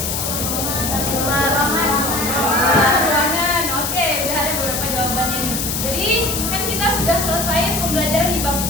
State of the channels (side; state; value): left; noise; hiss, 2 dB below the sound